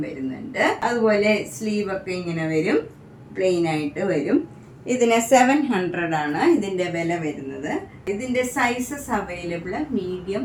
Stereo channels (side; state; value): both; identical; correlation 1.00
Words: വരുന്നുണ്ട്. അതുപോലെ സ്ലീവൊക്കെ ഇങ്ങനെ വരും. പ്ലെയിൻ ആയിട്ട് വരും. ഇതിന് 700 ആണ് ഇതിൻ്റെ വില വരുന്നത്. ഇതിൻ്റെ sizes available